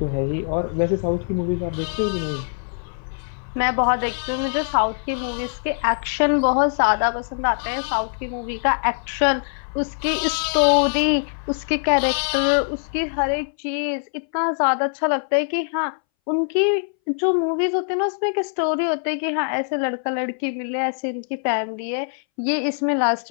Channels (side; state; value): right; silent; 61 dB below the other